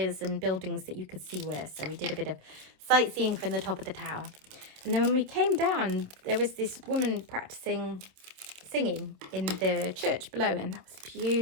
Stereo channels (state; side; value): late; left; 27 ms